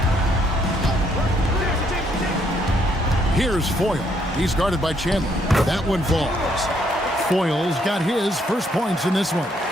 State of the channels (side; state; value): both; normal; correlation 0.70